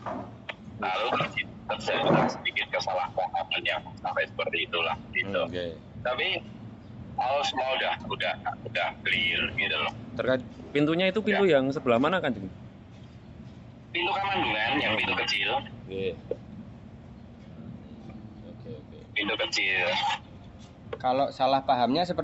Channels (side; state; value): both; identical; correlation 1.00